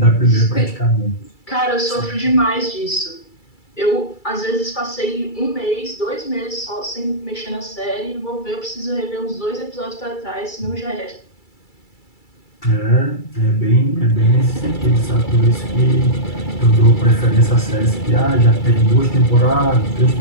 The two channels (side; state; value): right; late; 2.3 ms